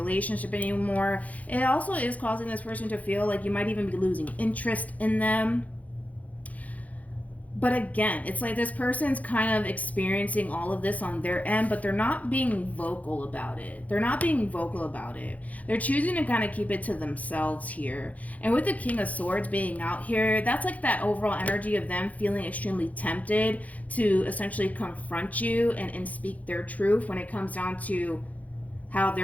anymore. It also is causing this person to feel like you might even be losing interest in them. But again, it's like this person's kind of experiencing all of this on their end, but they're not being vocal about it. They're not being vocal about it. They're choosing to kind of keep it to themselves here. And with the King of Swords being out here, that's like that overall energy of them feeling extremely tempted to essentially confront you and speak their truth when it comes down to how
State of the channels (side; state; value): right; late; 0.073 ms